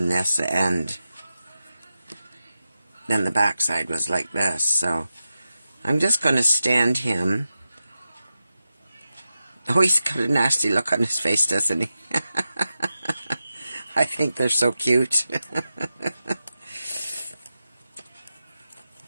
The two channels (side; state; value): both; inverted; correlation -0.91